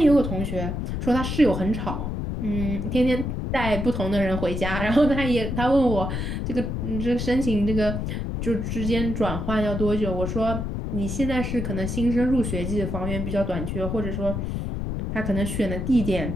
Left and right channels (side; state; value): left; noise; rumble, 3 dB below the sound